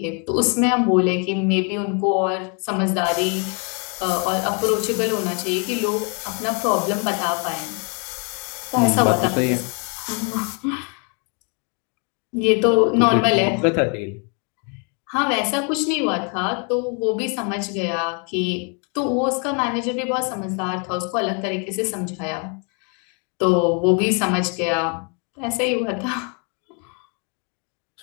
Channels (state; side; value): quieter; right; 37.1 dB